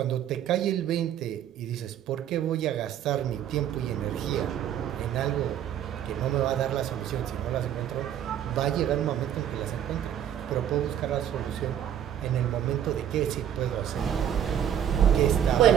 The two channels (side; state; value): left; quieter; 10.1 dB